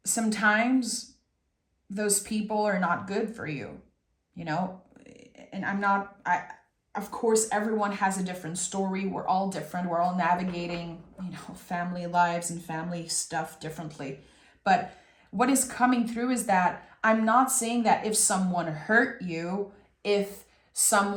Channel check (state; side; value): identical; both; correlation 1.00